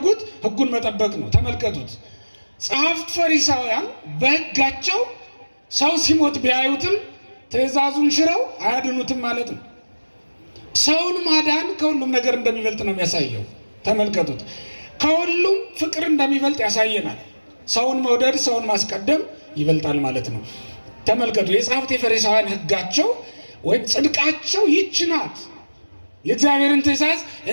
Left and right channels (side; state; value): both; inverted; correlation -1.00